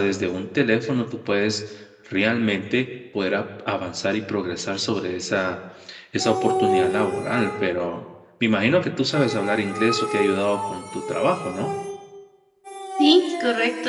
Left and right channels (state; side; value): identical; both; correlation 1.00